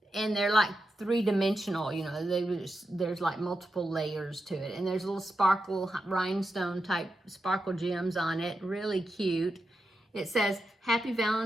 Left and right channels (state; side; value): normal; both; correlation 0.88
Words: and they're like 3-dimensional, you know. There's like multiple layers to it, and there's little sparkle rhinestone type sparkle gems on it. Really cute. It says Happy